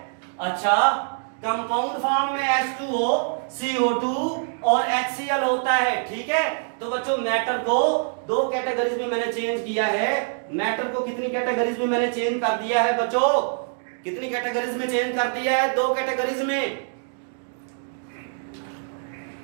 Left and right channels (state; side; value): silent; left; digital silence